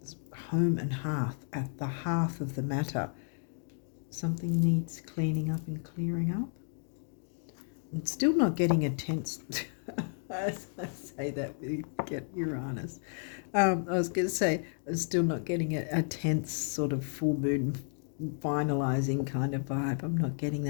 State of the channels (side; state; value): right; silent; 56 dB below the other